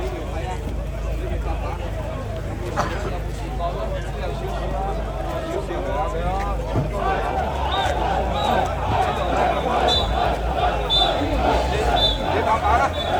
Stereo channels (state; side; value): identical; both; correlation 1.00